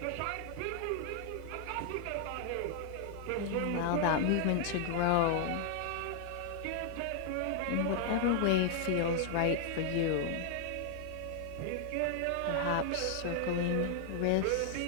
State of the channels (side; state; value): both; different; correlation 0.00